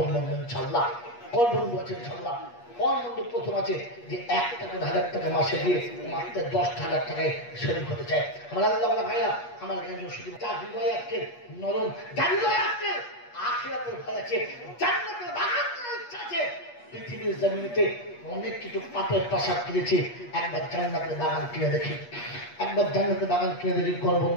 বন্ধু ইনশাআল্লাহ। কোন বন্ধু আছে ইনশাআল্লাহ? কোন বন্ধু প্রথম আছে যে 1টা করে 1000 টাকা মাসে দিয়ে মাত্র 10,000 টাকায় শরীর হতে চায়? আমার আল্লাহ ভাইরা, আমার জ্ঞান শুধু যার হৃদয় আজকে নরম, যার হৃদয় আজকে আখিরাতের ভয় আছে, জান্নাতের বাগান ইচ্ছা আছে। পৃথিবীর জমিনেতে অনেক কিছু পাপের প্রাসাদ কিনেছি, একবার জান্নাতের বাগান কিনে দেখি, একবার জান্নাতের বাগান কিনে দেখি। কোন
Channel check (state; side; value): late; right; 8.3 ms